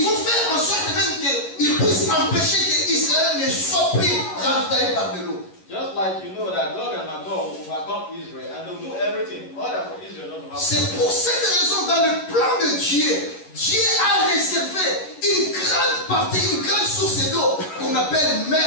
vont faire en sorte même qu'ils puissent empêcher qu'Israël ne soit plus ravitaillé par de l'eau. Just like you know that Gog and Magog will overcome Israel and they'll do everything in order for Israel not to have. C'est pour cette raison, dans le plan de Dieu, Dieu a réservé une grande partie, une grande source d'eau qu'on appelle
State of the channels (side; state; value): right; late; 11 ms